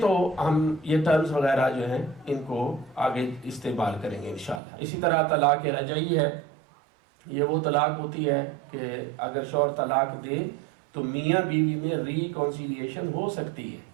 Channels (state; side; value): drops out; left; at 4.6 s